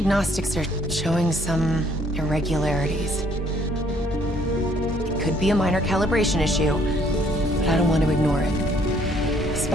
are showing some irregularities. It could be a minor calibration issue, but I don't want to ignore it.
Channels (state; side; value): normal; both; correlation 0.64